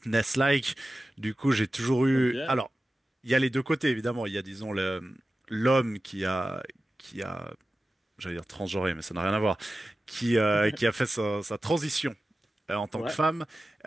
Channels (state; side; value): normal; both; correlation 0.94